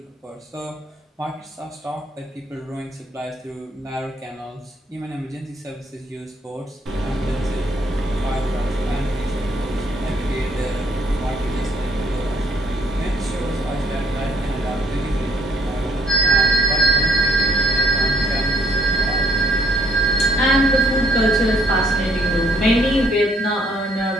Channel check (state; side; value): normal; both; correlation 0.65